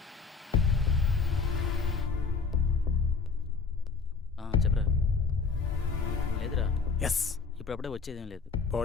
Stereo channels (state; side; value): quieter; right; 5.1 dB